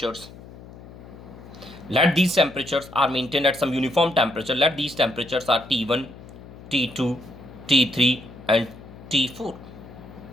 Let these temperatures are maintained at some uniform temperature. Let these temperatures are T1, T2, T3 and T4.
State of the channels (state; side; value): noise; left; hum, 17 dB below the sound